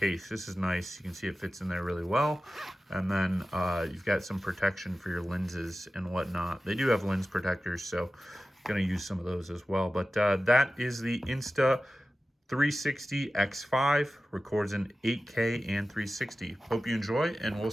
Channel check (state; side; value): normal; both; correlation 0.94